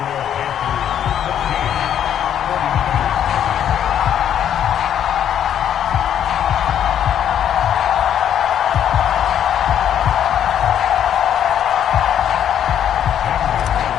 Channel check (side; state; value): right; quieter; 9.7 dB